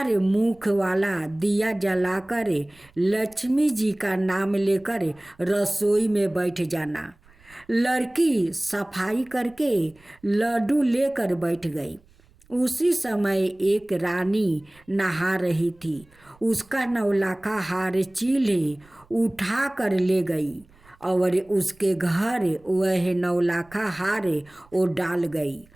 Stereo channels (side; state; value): right; noise; rumble, 29 dB below the sound